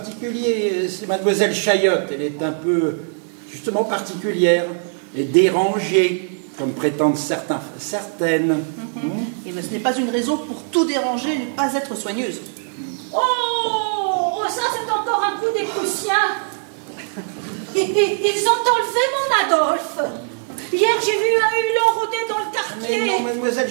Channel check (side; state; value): left; silent; 61 dB below the other